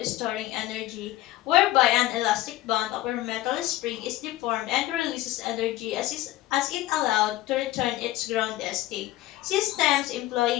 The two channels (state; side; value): quieter; right; 15.9 dB